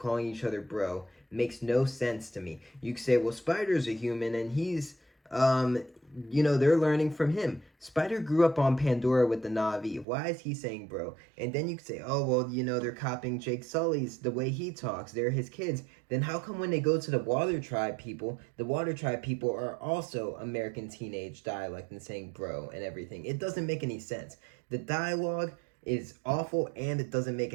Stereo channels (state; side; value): drops out; left; at 10.1 s